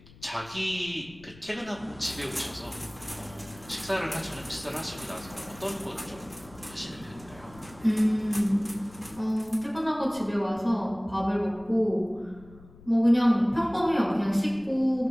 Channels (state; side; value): noise; left; rumble, 22 dB below the sound